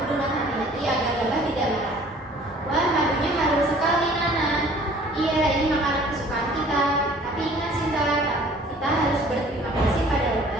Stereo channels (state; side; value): normal; both; correlation 0.52